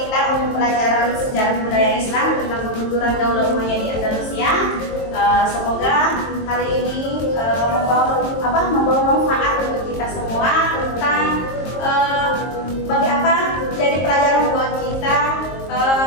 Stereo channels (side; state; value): right; late; 22 ms